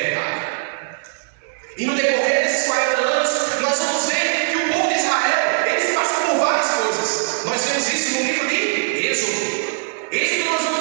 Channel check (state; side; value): silent; left; digital silence